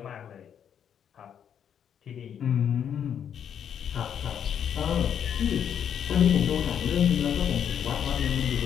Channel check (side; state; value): right; quieter; 8.6 dB